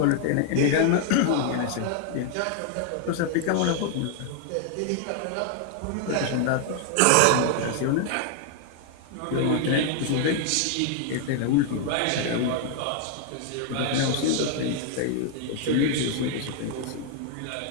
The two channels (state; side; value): different; both; correlation 0.00